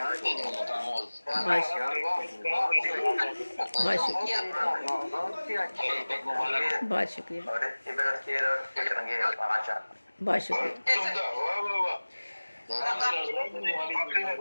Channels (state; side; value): inverted; both; correlation -1.00